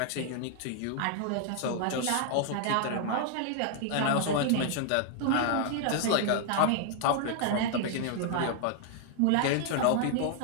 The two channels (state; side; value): different; both; correlation 0.00